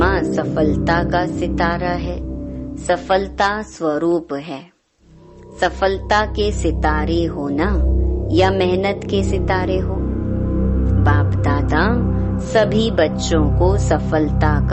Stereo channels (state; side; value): identical; both; correlation 1.00